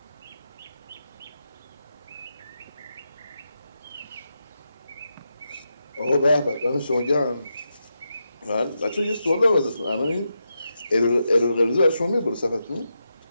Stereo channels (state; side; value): inverted; both; correlation -0.86